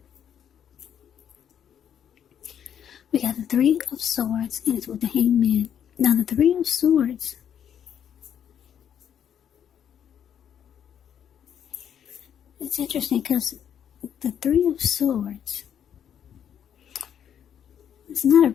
We got the Three of Swords, and it's with the Hangman. Now, the Three of Swords, it's interesting because the Three of Swords is not a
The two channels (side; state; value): right; quieter; 9.0 dB